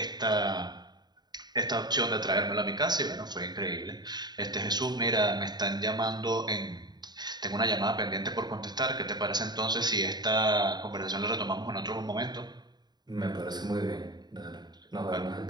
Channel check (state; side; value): late; left; 0.20 ms